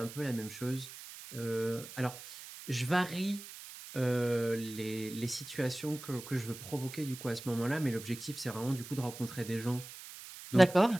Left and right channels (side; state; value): right; noise; hiss, 13 dB below the sound